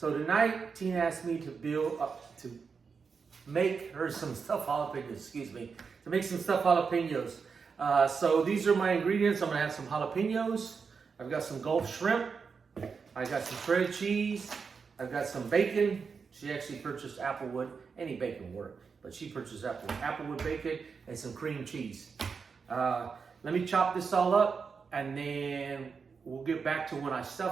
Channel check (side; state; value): left; quieter; 5.5 dB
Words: tonight, Tina asked me to make her some stuffed jalapenos, to make some stuffed jalapenos. So these are my ingredients. I'm gonna have some jalapenos. I've got some Gulf shrimp. I got some shredded cheese. I've got some bacon. She actually purchased Applewood. Any bacon work, but she purchased Applewood bacon and some cream cheese. Let me chop this all up. And then we'll get back to when I